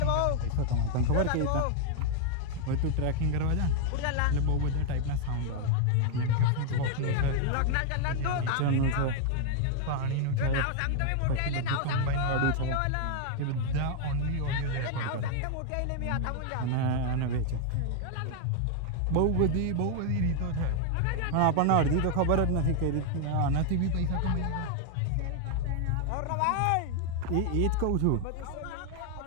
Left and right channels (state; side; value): different; both; correlation 0.00